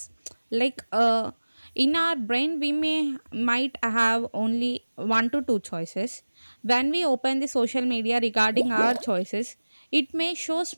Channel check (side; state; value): both; inverted; correlation -1.00